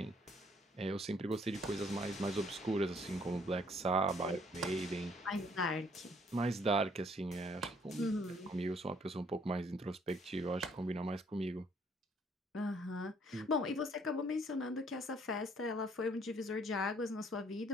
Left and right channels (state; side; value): normal; both; correlation 0.64